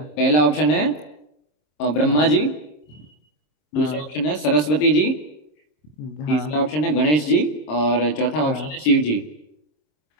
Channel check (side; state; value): right; late; 26 ms